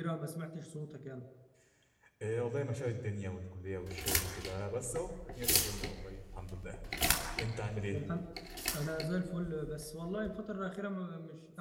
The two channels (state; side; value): identical; both; correlation 1.00